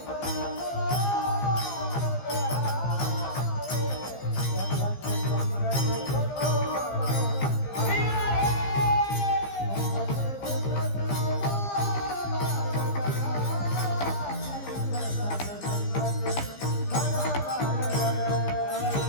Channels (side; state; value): right; late; 15 ms